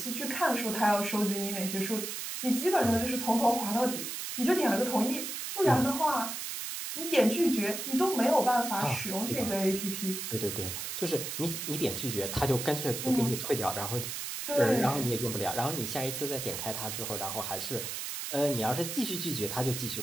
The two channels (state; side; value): noise; right; hiss, 5 dB below the sound